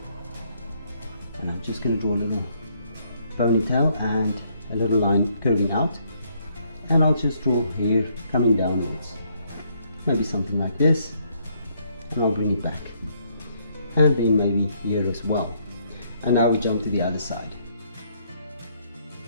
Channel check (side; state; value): both; inverted; correlation -0.70